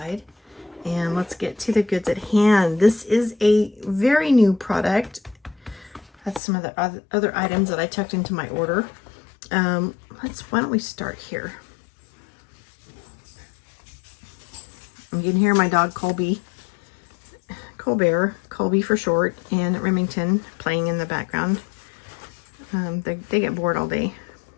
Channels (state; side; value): drops out; right; at 6.4 s